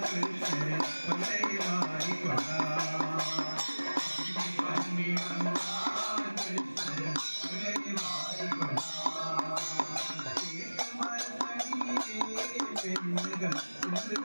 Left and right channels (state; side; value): inverted; both; correlation -1.00